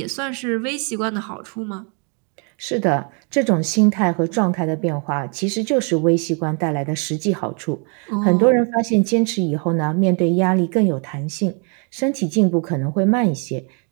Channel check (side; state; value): left; quieter; 37.9 dB